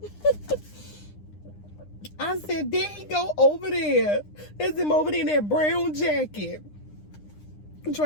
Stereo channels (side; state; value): right; late; 9.8 ms